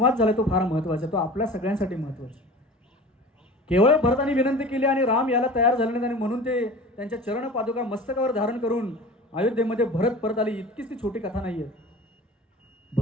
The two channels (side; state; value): both; normal; correlation 0.38